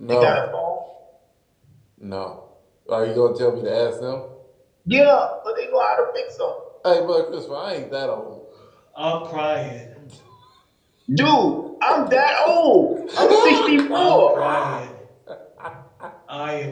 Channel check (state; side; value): identical; both; correlation 1.00